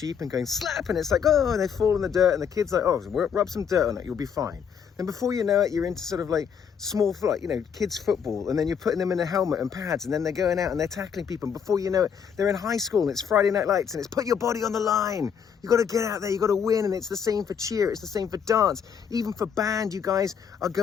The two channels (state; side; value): quieter; right; 7.3 dB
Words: and going slap, and it's like, oh, and they fall in the dirt, and the kid's like, oh, rub some dirt on it, you'll be fine. Then before you know it, you're into sort of like small, like, you know, kids football, and then you're putting them in a helmet and pads, and then they're going out and they're tackling people, and before you know it, they're in high school, and it's Friday Night Lights, and it's put your body on the line. You got to get out there, you got to win, and it's the same for cheer, it's the same for dance, even for band. You guys are